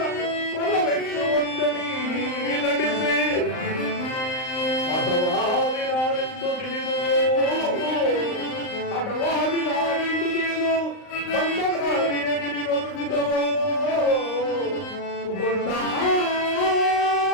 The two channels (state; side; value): late; right; 39 ms